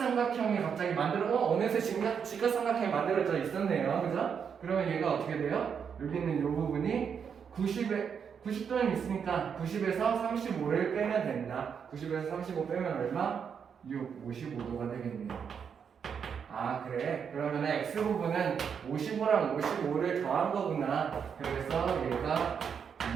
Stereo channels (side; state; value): left; quieter; 7.0 dB